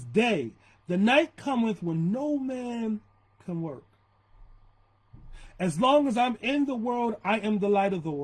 day. The night cometh when no man can work. As long as I'm in the world, I am the light of the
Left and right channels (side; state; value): both; identical; correlation 1.00